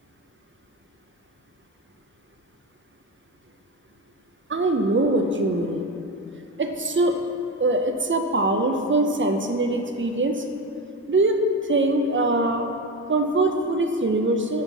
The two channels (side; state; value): both; normal; correlation 0.19